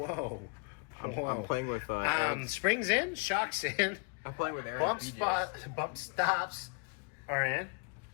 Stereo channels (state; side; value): quieter; right; 34.3 dB